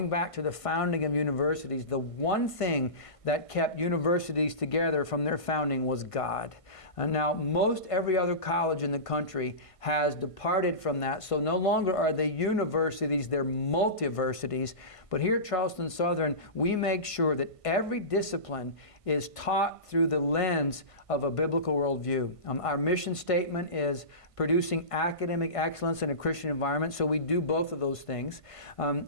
back to the founding of universities, the one thing that kept universities together from their founding was God. And now most every other college in the country has departed from that, so no longer are they universities, they're multiversities. But here at Charleston Southern, we make sure that every discipline is taught through the lens of a biblical worldview. Our mission statement is producing academic excellence in a Christian environment, so we do both of those things.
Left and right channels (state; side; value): late; right; 1.5 ms